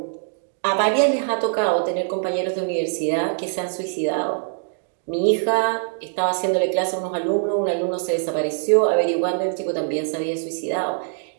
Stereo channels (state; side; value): silent; left; digital silence